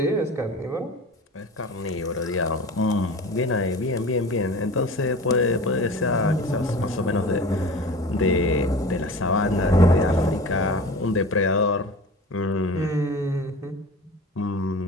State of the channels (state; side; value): normal; both; correlation 0.37